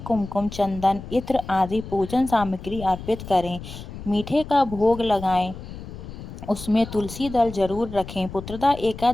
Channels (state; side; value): noise; left; rumble, 12 dB below the sound